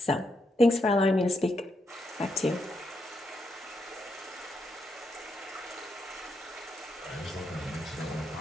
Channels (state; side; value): normal; both; correlation 0.81